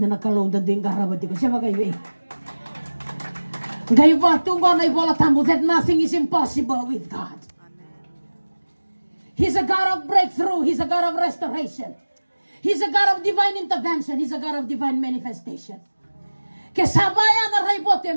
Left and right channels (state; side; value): inverted; both; correlation -1.00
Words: na kalong danding garabati ko siya bagay ngai va tungo na ibola tambo that nothing is impossible with God. He's a God of breakthrough. He's a God of restoration. He's a God of divine intervention. He's a God of divine manifestation. Kesabaya na raibote